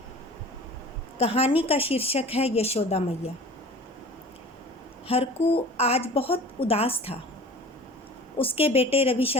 कहानी का शीर्षक है यशोदा मैया। हरकू आज बहुत उदास था। उसके बेटे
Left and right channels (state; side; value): normal; both; correlation 0.42